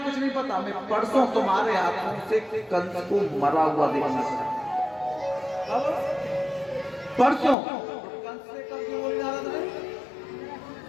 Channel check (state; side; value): drops out; right; at 7.6 s